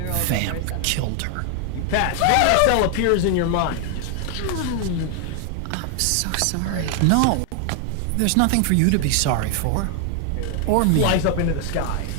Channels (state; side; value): different; both; correlation 0.00